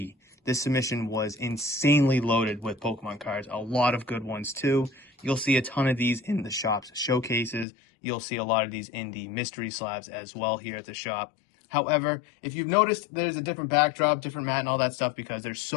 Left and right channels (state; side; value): drops out; right; at 7.7 s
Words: This submission was insanely loaded with Pokemon cards. A lot of good ones too. You'll see a ton of these in the shop's showcases. You'll see a lot of these in the mystery slabs as well here at the shop. However, if you've noticed, there's a different backdrop, different mat and all that stuff because there's